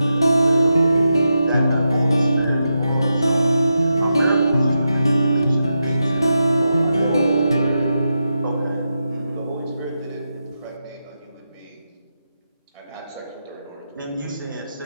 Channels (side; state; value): both; inverted; correlation -0.87